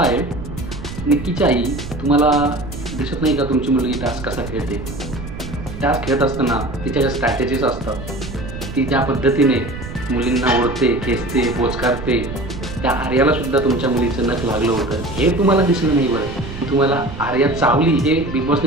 निक्कीची आई तुम्हाला दिसत नाही का तुमची मुलगी टास्क कसा खेळते? टास्क खेळत असताना तिच्या ज्या स्ट्रॅटेजीज असतात, ती ज्या पद्धतीने मुलींना ओढते, खेचते, बोचकारते, त्या आर्यालासुद्धा तुमच्या मुलीचं नख लागलं होतं हे तुम्हाला दिसलं नाही. बरं, तुम्हाला आर्या चावली हे बिग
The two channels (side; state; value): right; noise; rumble, 10 dB below the sound